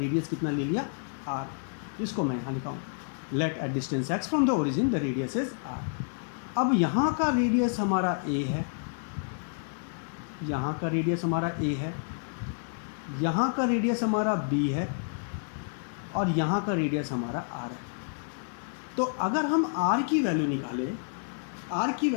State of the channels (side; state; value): right; silent; 58 dB below the other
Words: कितना ले लिया r। इसको मैं यहाँ लिखा हूँ, let at distance x from the origin the radius is r। अब यहाँ का रेडियस हमारा a है, यहाँ का रेडियस हमारा a है, यहाँ का रेडियस हमारा b है और यहाँ का रेडियस हमारा r है। तो अगर हम r की वैल्यू निकालें, r की